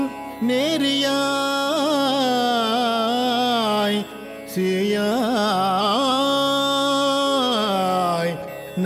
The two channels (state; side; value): identical; both; correlation 1.00